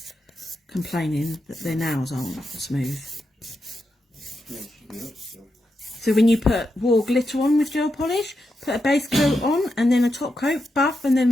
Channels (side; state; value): both; normal; correlation 0.86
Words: complaining that their nails aren't smooth. So when you put raw glitter on with gel polish, put a base coat on and then a top coat, buff, and